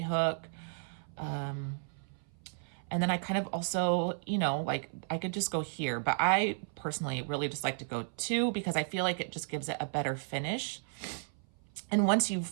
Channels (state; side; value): silent; left; 55 dB below the other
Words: And then I kind of also, like I could just go here, but I personally really just like to go 2 because I feel like it just gives it a better finish. And once you